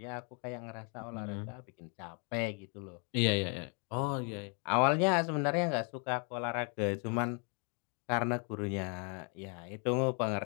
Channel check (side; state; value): right; quieter; 37.9 dB